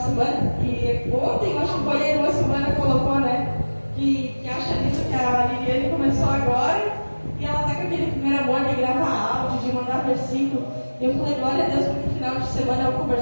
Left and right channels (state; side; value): inverted; both; correlation -1.00